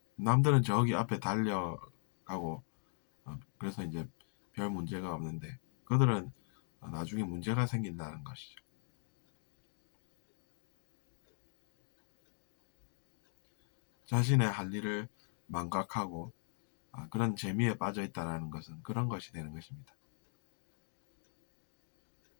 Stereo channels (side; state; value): right; silent; digital silence